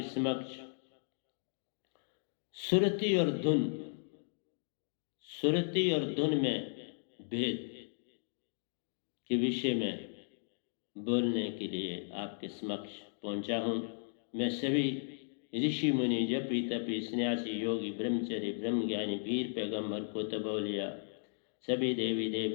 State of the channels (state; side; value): silent; right; digital silence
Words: समक्ष सुरती और धुन, सुरती और धुन में भेद के विषय में बोलने के लिए आपके समक्ष पहुंचा हूं। मैं सभी ऋषि मुनि, जपी तपी, सन्यासी, योगी, ब्रह्मचर्य, ब्रह्मज्ञानी, वीर, पैगंबर, कुतुब-औलिया, सभी देवी